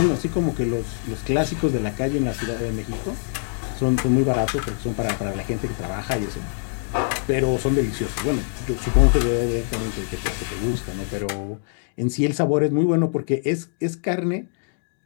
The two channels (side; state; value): right; silent; digital silence